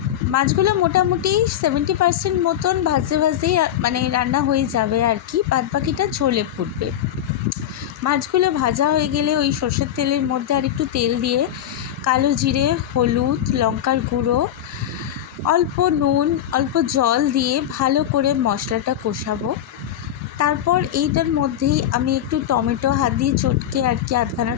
মাছগুলো মোটামুটি 70% মতন ভাজেই মানে রান্না হয়ে যাবে আর কি, বাদ বাকিটা ঝোলে ফুটবে। মাছগুলো ভাজা হয়ে গেলে ওই সর্ষের তেলের মধ্যে আর একটু তেল দিয়ে কালো জিরে, হলুদ, লঙ্কার গুঁড়ো, অল্প নুন, অল্প জল দিয়ে ভালো করে মশলাটা কষাবো। তারপর এইটার মধ্যেই আমি একটু টমেটো হাত দিয়ে চটকে আর কি আধখানা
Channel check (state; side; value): quieter; right; 10.9 dB